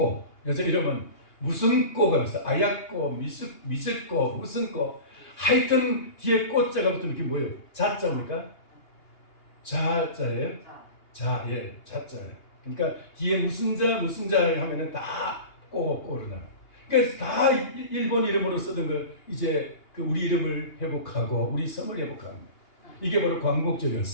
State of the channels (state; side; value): late; right; 2.8 ms